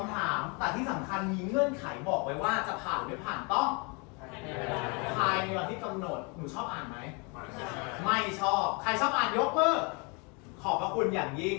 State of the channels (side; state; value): right; quieter; 31.9 dB